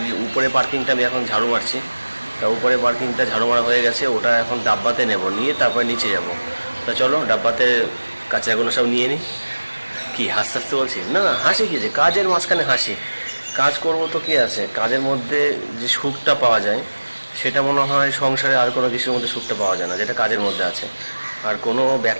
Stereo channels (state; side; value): inverted; both; correlation -1.00